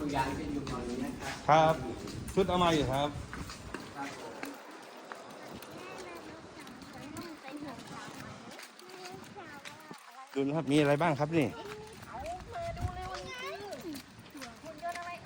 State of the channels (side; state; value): both; identical; correlation 1.00